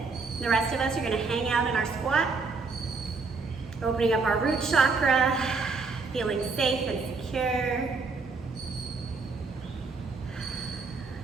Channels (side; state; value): left; quieter; 4.3 dB